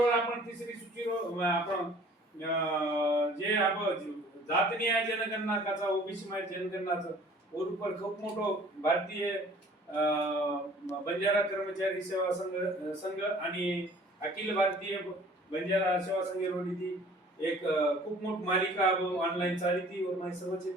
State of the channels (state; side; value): normal; both; correlation 0.51